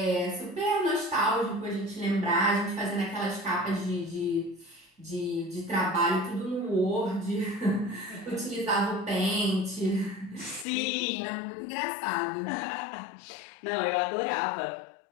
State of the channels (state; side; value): drops out; right; at 10.7 s